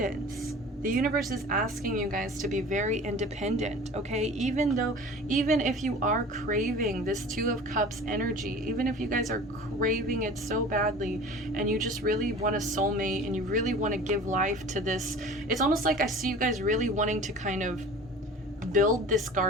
The universe is asking you guys to be very independent, okay? Even if you are craving this Two of Cups energy, even if you guys are craving it so badly, and you just really want a soulmate, and you really want to give life to this, it's almost like I see you guys really wanting to kind of build this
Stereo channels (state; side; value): normal; both; correlation 0.41